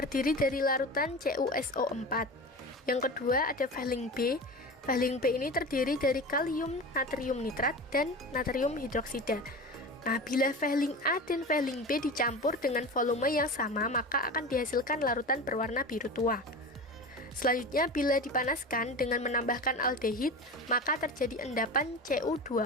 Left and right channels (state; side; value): normal; both; correlation 0.30